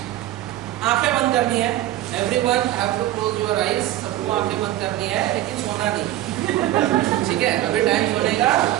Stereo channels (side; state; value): left; quieter; 14.2 dB